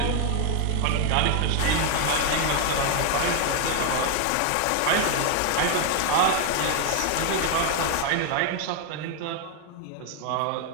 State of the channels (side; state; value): both; different; correlation 0.01